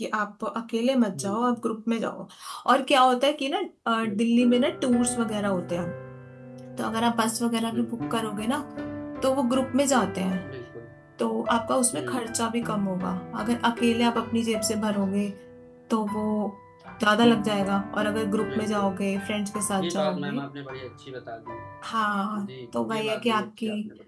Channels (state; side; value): identical; both; correlation 1.00